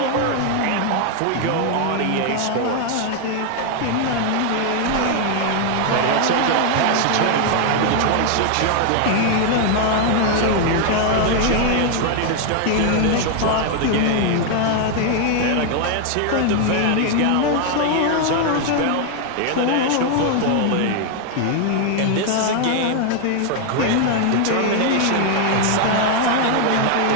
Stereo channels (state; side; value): different; both; correlation 0.00